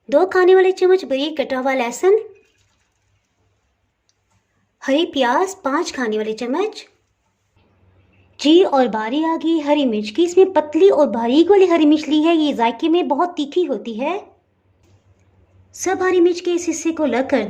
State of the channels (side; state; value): both; identical; correlation 1.00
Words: दो खाने वाले चम्मच बारीक कटा हुआ लहसुन, हरी प्याज 5 खाने वाले चम्मच। जी, और बारी आ गई हरी मिर्च की। इसमें पतली और बारीक वाली हरी मिर्च ली है, ये जायके में बहुत तीखी होती है। सब हरी मिर्च के इस हिस्से को अलग कर